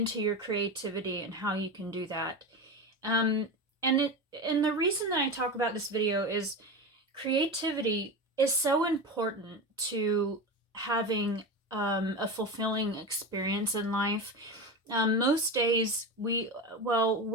your creativity and how you can do that. Um, and the reason that I talk about this video is creativity is so important to having a fulfilling experience in life. Most days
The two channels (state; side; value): normal; both; correlation 0.23